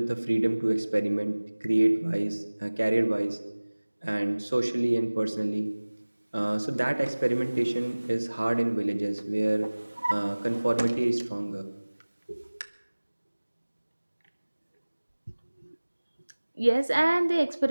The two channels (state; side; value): inverted; both; correlation -1.00